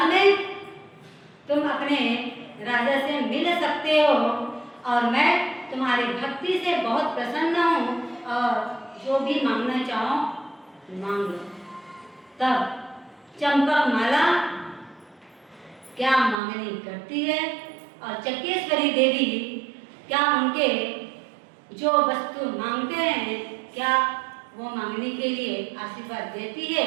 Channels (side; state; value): left; drops out; at 16.4 s